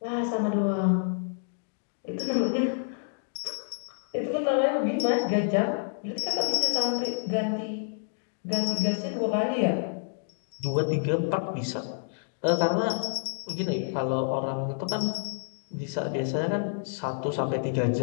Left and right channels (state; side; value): silent; right; digital silence